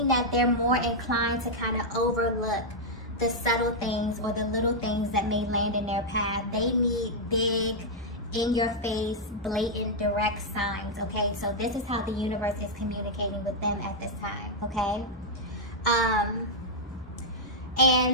that they're more inclined to kind of overlook the subtle things or the little things that may land in their path. They need big, in your face, blatant, direct signs, okay? So this is how the universe is communicating with them at this time, okay?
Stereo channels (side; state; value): both; normal; correlation -0.04